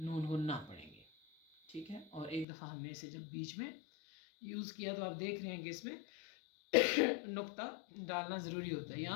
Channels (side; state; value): right; drops out; at 2.5 s